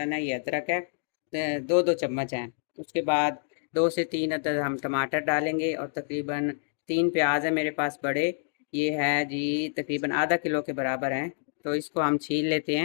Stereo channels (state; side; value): silent; right; digital silence